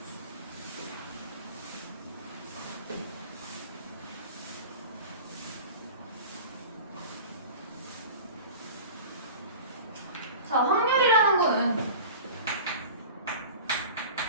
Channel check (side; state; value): both; inverted; correlation -0.36